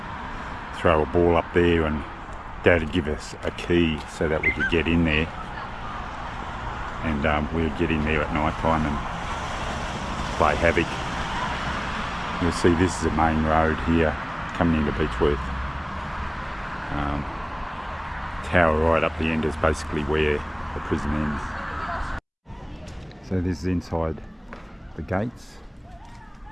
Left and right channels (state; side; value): identical; both; correlation 1.00